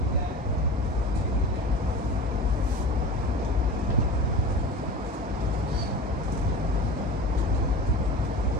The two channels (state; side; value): normal; both; correlation 0.34